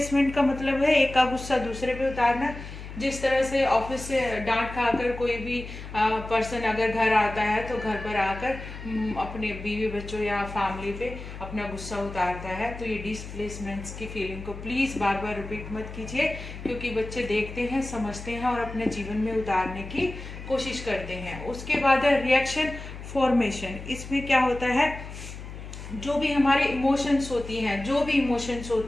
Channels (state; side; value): noise; left; hum, 11 dB below the sound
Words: का मतलब है एक का गुस्सा दूसरे पे उतारना। जिस तरह से ऑफिस से डांट खाकर कोई भी पर्सन अगर घर आता है तो घर पर आकर अपने बीवी बच्चों या फैमिली पे अपना गुस्सा उतारता है, तो ये डिस्प्लेसमेंट्स की फीलिंग को प्लीज़ बार बार रिपीट मत कीजिए, क्योंकि बच्चे देखते हैं, समझते हैं और अपने जीवन में उतारने की कोशिश करते हैं। उसके बाद है रिएक्शन फॉर्मेशन। इसमें क्या होता है, जो भी हमारे इमोशंस होती हैं, जो भी इमोशंस